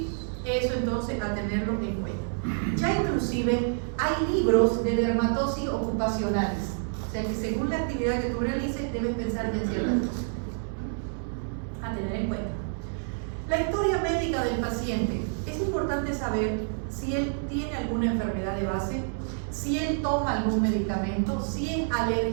Eso entonces a tenerlo en cuenta. Ya inclusive hay libros de dermatosis ocupacionales, o sea que según la actividad que tú realices debes pensar en ciertas cosas a tener en cuenta. La historia médica del paciente. Es importante saber si él tiene alguna enfermedad de base, si él toma algún medicamento, si es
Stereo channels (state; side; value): silent; left; digital silence